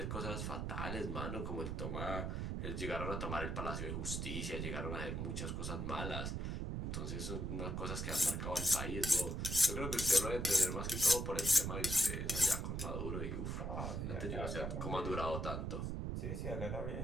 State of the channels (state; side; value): noise; right; rumble, 2 dB below the sound